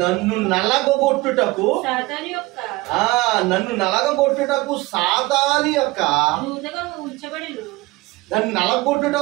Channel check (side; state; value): left; quieter; 21.5 dB